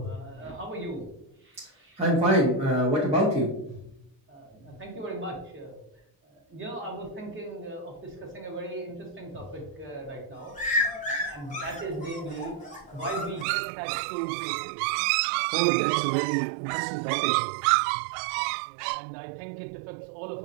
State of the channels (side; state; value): left; drops out; at 13.5 s